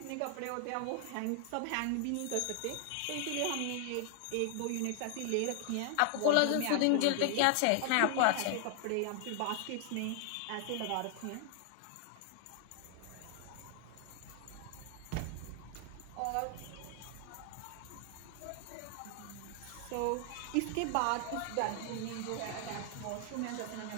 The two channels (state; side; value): different; both; correlation 0.00